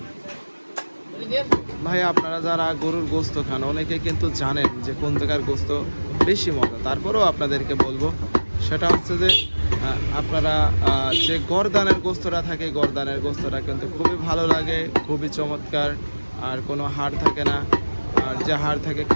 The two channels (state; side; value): inverted; both; correlation -1.00